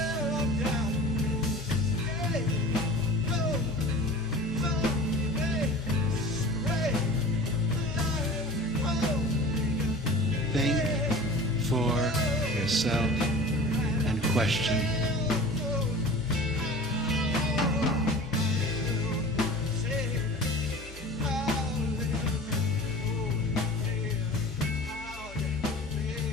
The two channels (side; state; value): left; noise; hum, 16 dB below the sound